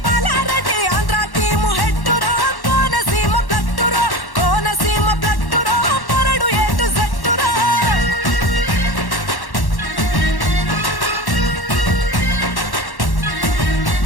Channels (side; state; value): right; late; 1.1 ms